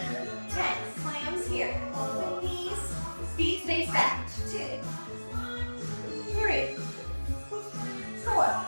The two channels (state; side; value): inverted; both; correlation -1.00